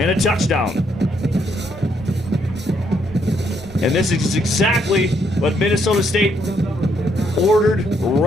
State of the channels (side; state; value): both; normal; correlation 0.73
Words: a touchdown. And this is exactly what Minnesota State ordered